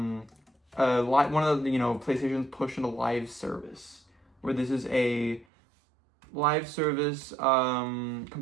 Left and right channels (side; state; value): left; drops out; at 5.5 s